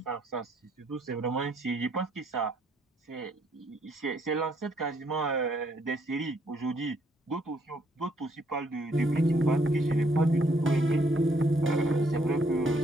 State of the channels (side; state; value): both; normal; correlation 0.69